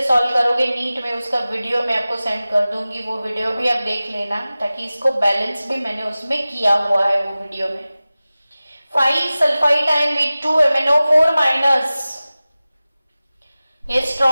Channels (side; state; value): both; inverted; correlation -0.97